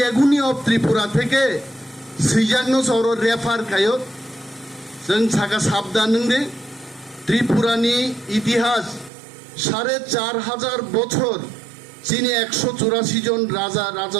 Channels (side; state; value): left; drops out; at 9.1 s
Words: এগুনি অফ ত্রিপুরা থেকে সিজাগনো সর রেফার খায় जों साका साबधान नंदे त्रिपुरानी इतिहास 4500 বছর चीनी 184 जन राजा